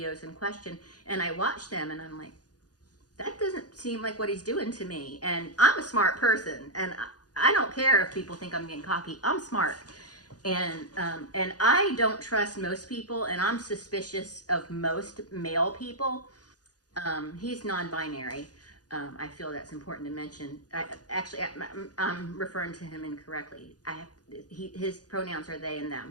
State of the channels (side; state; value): right; late; 0.68 ms